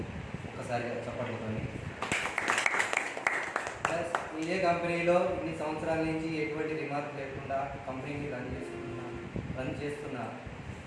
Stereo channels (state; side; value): identical; both; correlation 1.00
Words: ఒకసారి చెప్పండి. ప్లస్ ఇదే కంపెనీలో ఇన్ని సంవత్సరాల నుంచి ఎటువంటి రిమార్క్ లేకుండా కంపెనీని రన్ చేస్తున్న